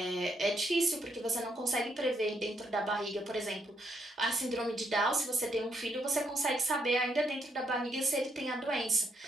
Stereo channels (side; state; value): both; normal; correlation 0.75